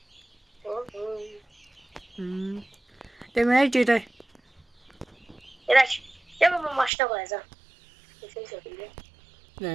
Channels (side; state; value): left; drops out; at 6.9 s